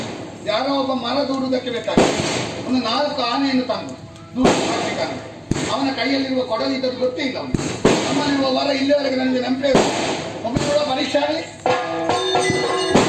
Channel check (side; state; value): both; identical; correlation 1.00